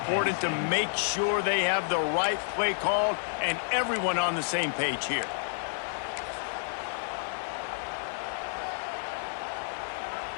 to make sure they have the right play called and everyone on the same page here.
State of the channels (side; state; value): right; silent; digital silence